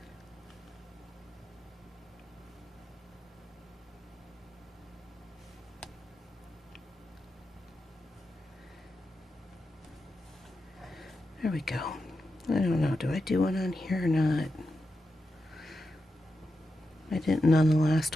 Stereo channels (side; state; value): both; normal; correlation 0.89